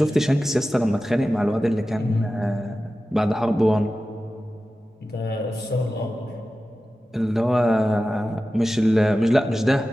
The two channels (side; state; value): both; normal; correlation 0.94